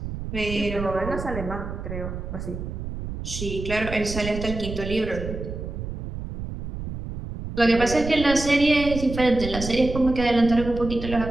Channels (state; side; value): noise; right; rumble, 7 dB below the sound